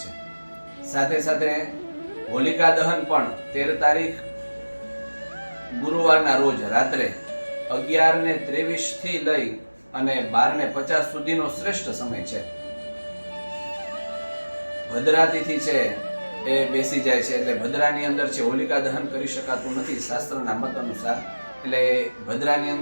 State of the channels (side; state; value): both; inverted; correlation -1.00